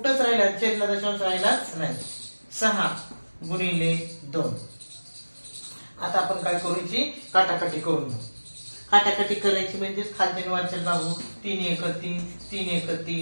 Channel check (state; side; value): inverted; both; correlation -1.00